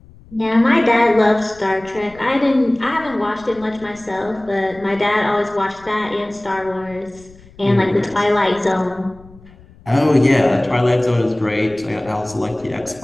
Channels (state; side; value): noise; left; rumble, 24 dB below the sound